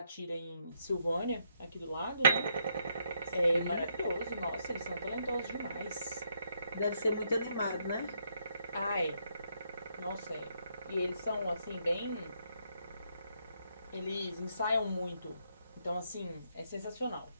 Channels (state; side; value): inverted; both; correlation -0.74